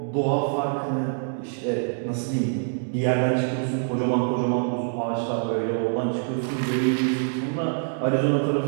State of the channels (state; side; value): silent; left; digital silence